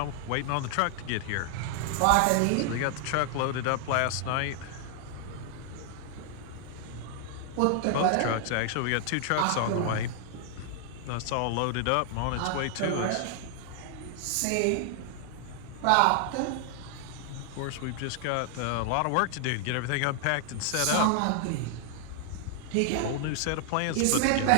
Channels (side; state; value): both; different; correlation 0.00